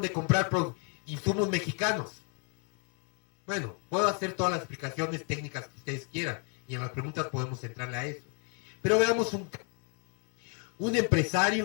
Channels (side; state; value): right; quieter; 38.1 dB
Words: de comprar insumos mexicanos? Bueno, puedo hacer todas las explicaciones técnicas que ustedes quieran, y en las preguntas podemos entrarle a eso. Pero veamos un